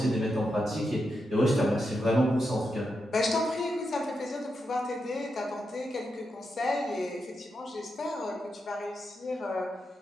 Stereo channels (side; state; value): both; normal; correlation 0.86